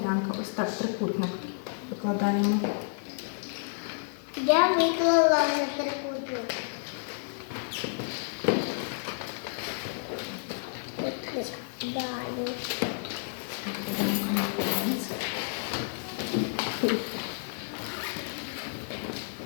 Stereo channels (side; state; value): right; silent; 58 dB below the other